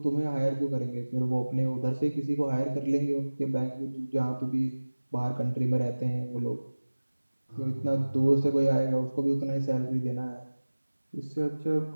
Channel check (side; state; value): both; inverted; correlation -1.00